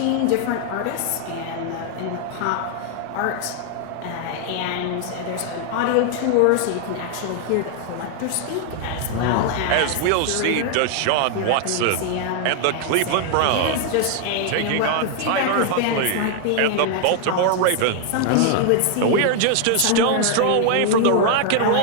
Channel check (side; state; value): both; different; correlation 0.00